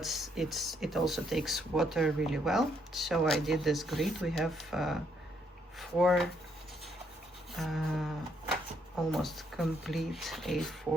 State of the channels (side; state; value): both; normal; correlation 0.73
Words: it also takes water really well. So I did this grid. We have 4 almost complete